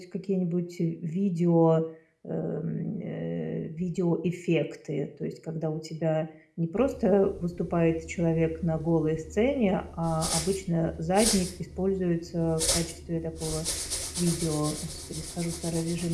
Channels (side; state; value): both; identical; correlation 1.00